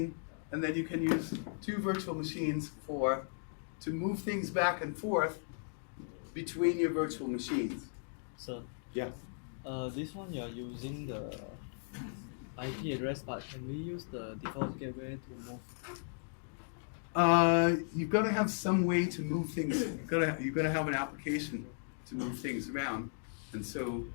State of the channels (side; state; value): right; silent; digital silence